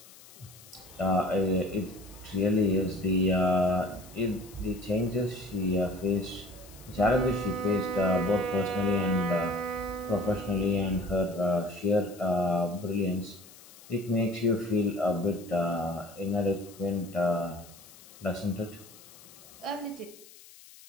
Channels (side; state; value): left; noise; hiss, 21 dB below the sound